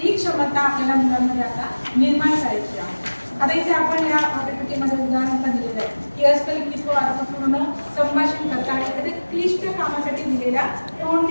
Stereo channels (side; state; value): both; inverted; correlation -1.00